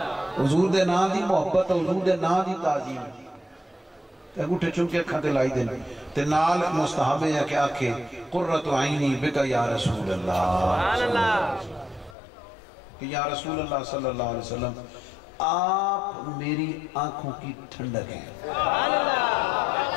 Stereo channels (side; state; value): right; drops out; at 12.2 s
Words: حضور دے نام دی محبت، حضور دے نام دی تعظیم ہے۔ انگوٹھے چونکے اکھاں تے لائی دیں تے نال مستحب ہے کہ آکھے قرۃ عینی بک یا رسول اللہ، کہ یا رسول اللہ صلی اللہ علیہ وسلم آپ میری آنکھوں کی ٹھنڈک ہیں۔